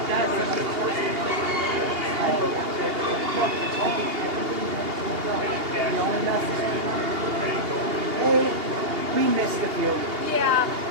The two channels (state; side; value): late; left; 2.8 ms